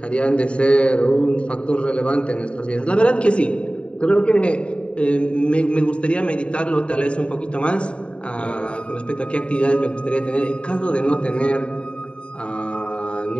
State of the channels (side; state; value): right; late; 0.057 ms